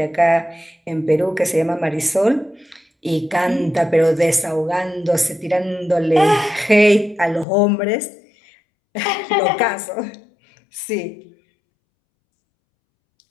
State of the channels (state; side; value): drops out; right; at 7.5 s